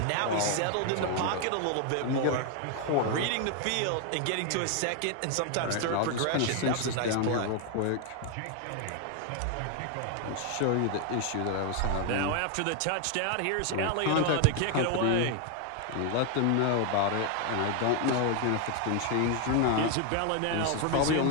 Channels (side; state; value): both; different; correlation 0.01